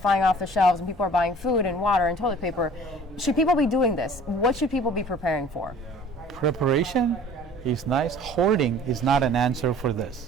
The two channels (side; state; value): both; normal; correlation 0.48